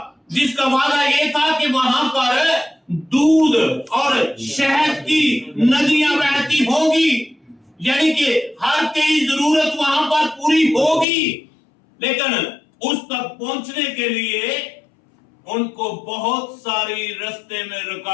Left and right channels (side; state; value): right; drops out; at 11.1 s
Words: जिसका वादा ये था कि वहां पर दूध और शहद की नदियां बहती होगी, यानी कि हर तेरी जरूरत वहां पर पूरी होगी। लेकिन उस तक पहुंचने के लिए उनको बहुत सारी रास्ते में